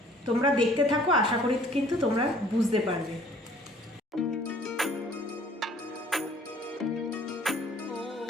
তোমরা দেখতে থাকো, আশা করি কিন্তু তোমরা বুঝতে পারবে।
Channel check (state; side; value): normal; both; correlation 0.55